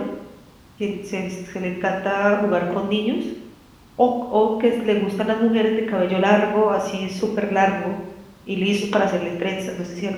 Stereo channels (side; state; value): both; identical; correlation 1.00